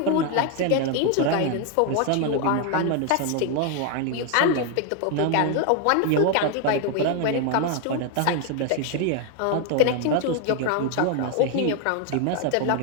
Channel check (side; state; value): both; different; correlation 0.00